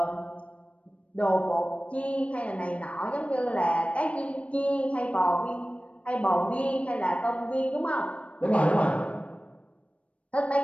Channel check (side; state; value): right; late; 0.063 ms